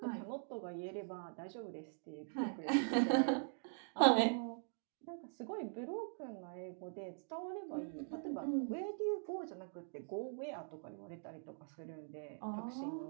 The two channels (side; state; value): left; silent; digital silence